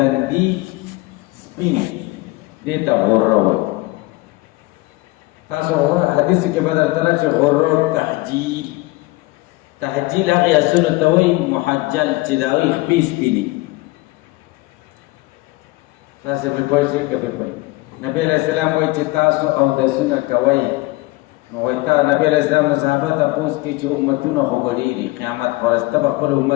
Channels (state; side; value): quieter; right; 21.6 dB